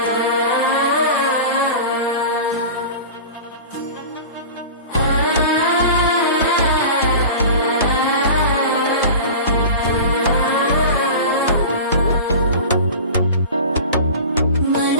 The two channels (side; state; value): both; inverted; correlation -0.34